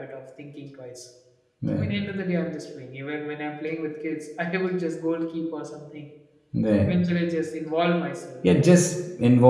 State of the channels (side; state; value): both; identical; correlation 1.00